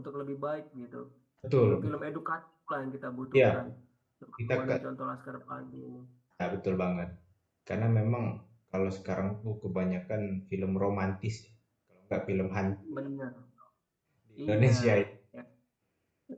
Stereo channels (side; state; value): both; identical; correlation 1.00